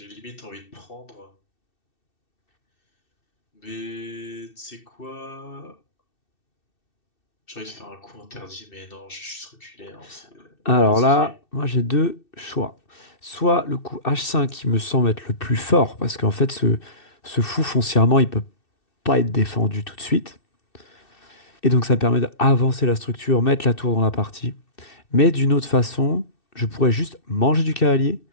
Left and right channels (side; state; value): right; late; 2.6 ms